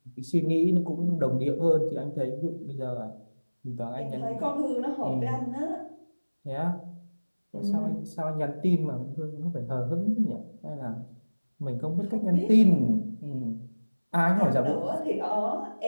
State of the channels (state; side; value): inverted; both; correlation -1.00